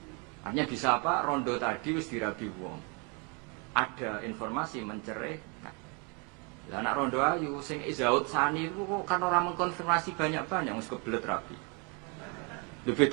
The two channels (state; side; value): quieter; left; 33.0 dB